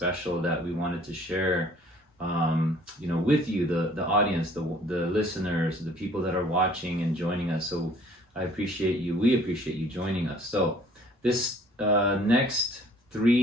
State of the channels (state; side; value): normal; both; correlation 0.55